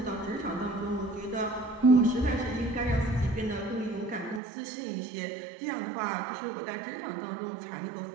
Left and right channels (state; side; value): drops out; left; at 4.4 s